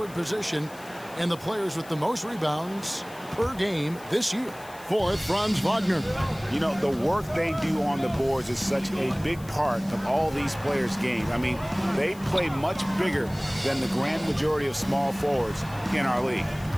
position and the players with the most rebounds per game this year. Fourth, Franz Wagner. You know, the work they do on the boards is such a big part of all these players' games. I mean, they play much bigger than the grand majority of small forwards in our league.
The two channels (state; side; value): noise; left; hiss, 21 dB below the sound